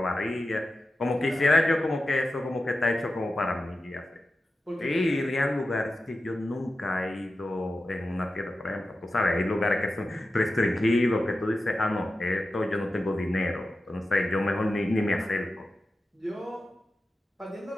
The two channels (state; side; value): normal; both; correlation 0.92